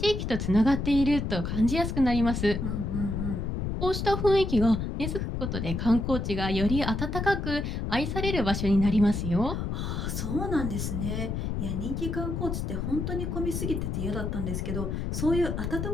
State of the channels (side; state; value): left; noise; rumble, 2 dB below the sound